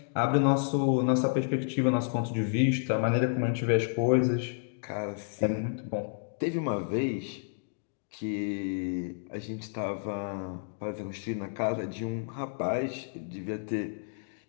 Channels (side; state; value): right; silent; digital silence